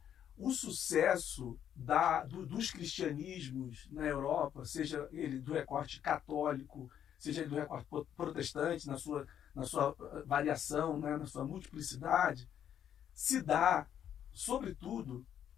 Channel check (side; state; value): right; quieter; 9.7 dB